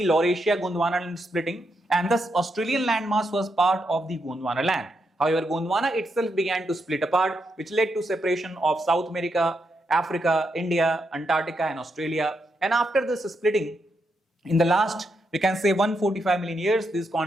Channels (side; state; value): both; normal; correlation 0.82